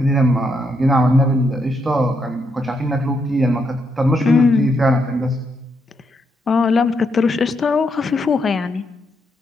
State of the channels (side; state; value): both; normal; correlation 0.79